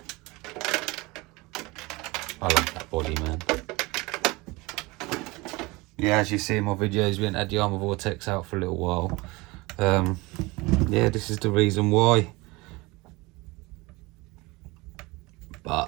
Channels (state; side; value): quieter; left; 23.3 dB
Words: I love that body, man. Yeah, as you see in my videos, we haven't had the arrma vortex out for a little while. Yeah, this is the reason why.